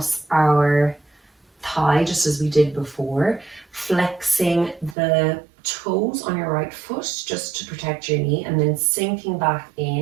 our thigh, just as we did before, flexing the toes on your right foot just to protect your knee, and then sinking back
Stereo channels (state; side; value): drops out; left; at 5.0 s